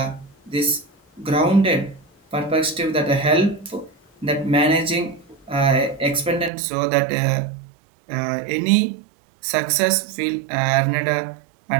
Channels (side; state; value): left; drops out; at 6.5 s